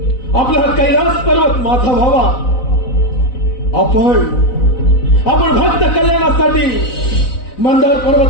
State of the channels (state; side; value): late; right; 4.0 ms